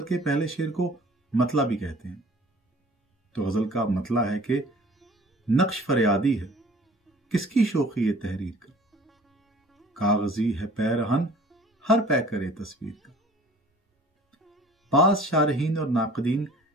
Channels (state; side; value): normal; both; correlation 0.48